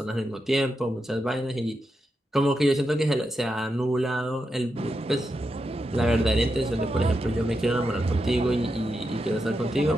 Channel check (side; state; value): both; normal; correlation 0.86